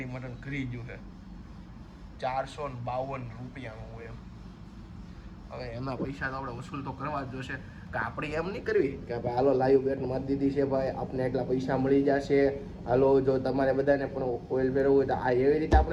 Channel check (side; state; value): both; identical; correlation 1.00